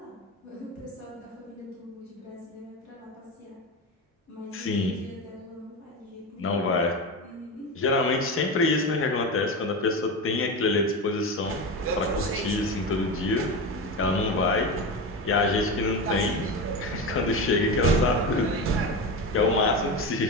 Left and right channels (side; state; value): both; normal; correlation 0.21